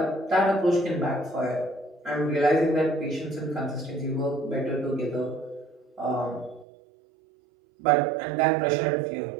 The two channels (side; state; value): left; drops out; at 6.7 s